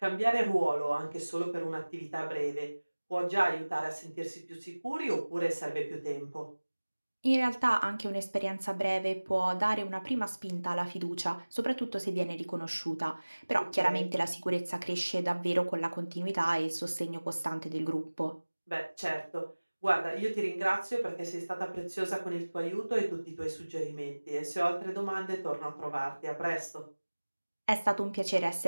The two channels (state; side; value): inverted; both; correlation -1.00